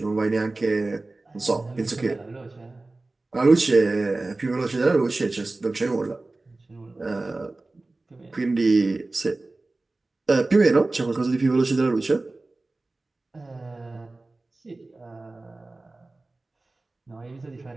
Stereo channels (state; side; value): quieter; left; 3.1 dB